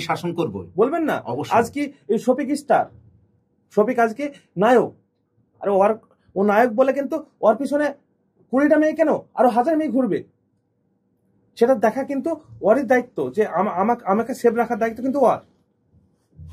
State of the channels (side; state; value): both; identical; correlation 1.00